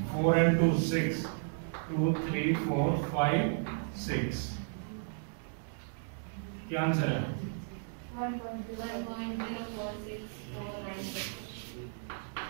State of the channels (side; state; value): left; silent; digital silence